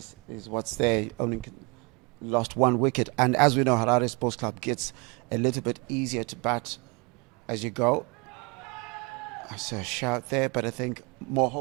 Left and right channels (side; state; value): left; quieter; 29.7 dB